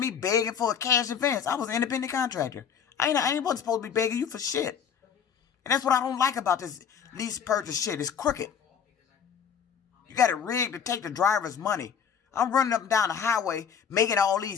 begging for a cash advance. I was an independent contractor. I ain't wasn't supposed to be begging you for shit. And that's what I don't like about this lease purchase shit. It's crooked. You got it rigged to take the driver's money. I'm running up and down the highway making all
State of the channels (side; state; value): right; quieter; 7.5 dB